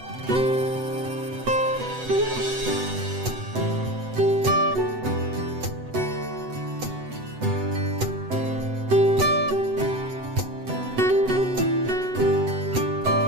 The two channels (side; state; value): left; late; 7.9 ms